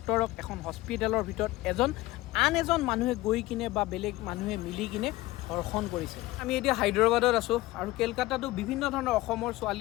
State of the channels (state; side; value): quieter; right; 18.5 dB